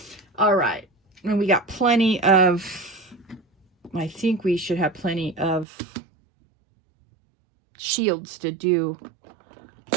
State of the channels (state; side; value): drops out; left; at 5.7 s